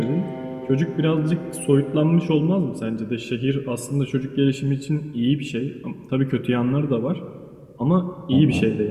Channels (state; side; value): identical; both; correlation 1.00